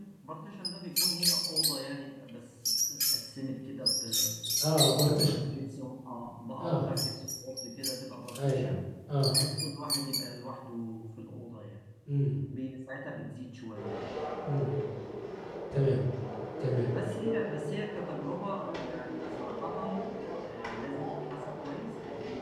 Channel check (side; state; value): both; identical; correlation 1.00